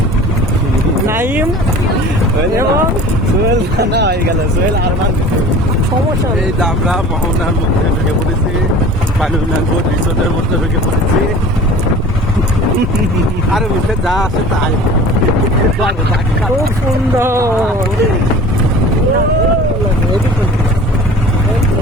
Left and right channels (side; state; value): both; normal; correlation 0.42